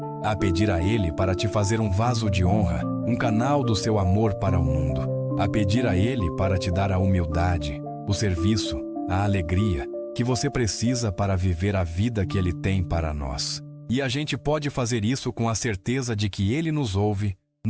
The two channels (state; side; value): identical; both; correlation 1.00